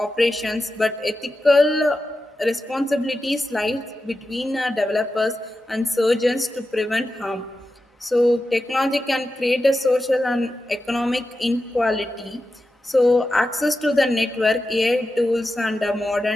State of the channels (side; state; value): both; normal; correlation 0.91